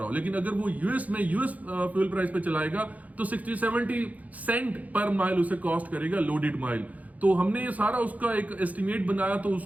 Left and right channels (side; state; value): left; late; 0.075 ms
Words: हो। लेकिन अगर वो यूएस में यूएस फ्यूल प्राइस पे चलाएगा तो 60-70 सेंट पर माइल उसे कॉस्ट करेगा लोडेड माइल। तो हमने ये सारा उसका एक एस्टिमेट बनाया, तो